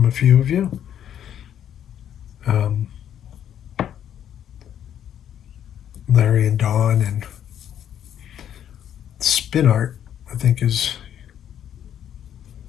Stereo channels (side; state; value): right; quieter; 9.9 dB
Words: a few of you. Larry and Dawn and Spin Art, I think is.